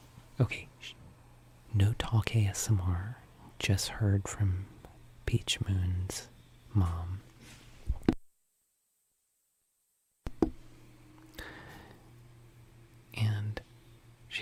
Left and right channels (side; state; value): both; identical; correlation 1.00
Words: Okay. No talk ASMR. Just heard from Peach Moon's mom. And